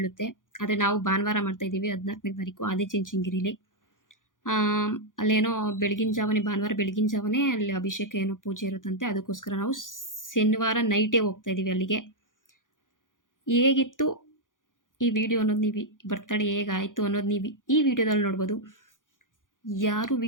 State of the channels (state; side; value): late; right; 0.88 ms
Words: ಆದರೆ ನಾವು ಭಾನುವಾರ ಮಾಡ್ತಾಯಿದ್ದೀವಿ 14ನೇ ತಾರೀಕು ಆದಿಚುಂಚನಗಿರಿಲಿ. ಅಲ್ಲೇನೋ ಭಾನುವಾರ ಬೆಳಗಿನ ಜಾವನೇ ಅಲ್ಲಿ ಅಭಿಷೇಕ ಏನೋ ಪೂಜೆ ಇರುತ್ತಂತೆ. ಅದಕ್ಕೋಸ್ಕರ ನಾವು ಶನಿವಾರ ನೈಟೇ ಹೋಗ್ತಾಯಿದ್ದೀವಿ ಅಲ್ಲಿಗೆ. ಹೇಗಿತ್ತು ಈ ವಿಡಿಯೋ ಅನ್ನೋದು ನೀವು ಬರ್ತಡೇ ಹೇಗಾಯಿತು ಅನ್ನೋದು ನೀವು ಈ ವಿಡಿಯೋದಲ್ಲಿ ನೋಡ್ಬೋದು. ಯಾರು